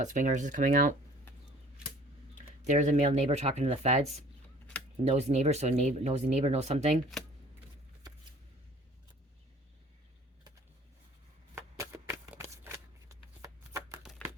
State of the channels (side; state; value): both; normal; correlation 0.51